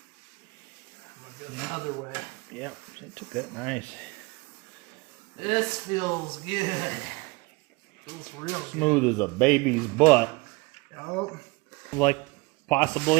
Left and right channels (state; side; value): quieter; left; 25.5 dB